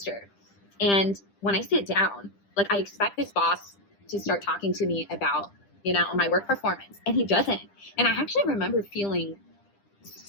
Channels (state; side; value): late; right; 10 ms